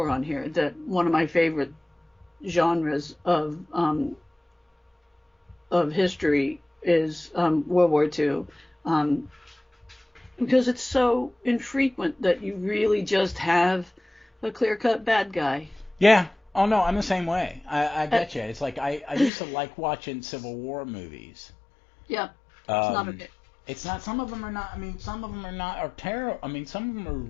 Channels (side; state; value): right; drops out; at 19.3 s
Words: on here, that one of my favorite genres of history is World War II, because it's so infrequent that you really just have a clear-cut bad guy. Yeah. Oh, no, I'm the same way. I get you. It's like I used to like watching Civil War movies. Yeah, it's not okay. It's not. Some of them are not. I mean, some of them are terrible. I mean, some of them